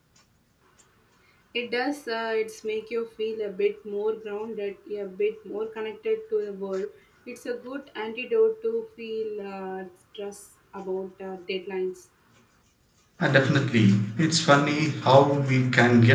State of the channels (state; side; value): identical; both; correlation 1.00